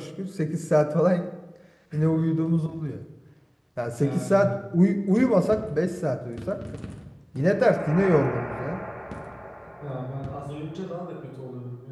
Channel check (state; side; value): identical; both; correlation 1.00